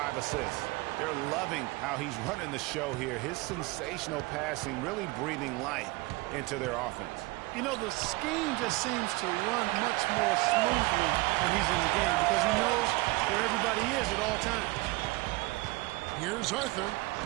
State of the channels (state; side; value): quieter; left; 22.9 dB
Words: assists. They're loving how he's running the show here. His sensational passing really breathing life into their offense. You know, the scheme just seems to run much more smoothly when he's in the game because he knows where everybody is at all times. Here's Arthur,